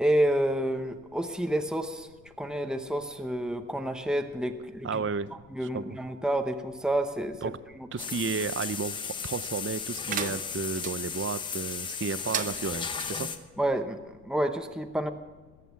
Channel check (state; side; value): noise; left; rumble, 25 dB below the sound